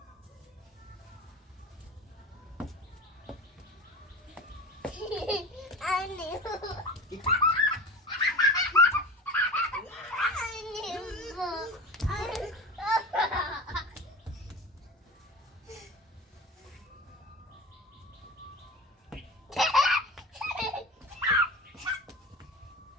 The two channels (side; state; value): both; normal; correlation 0.31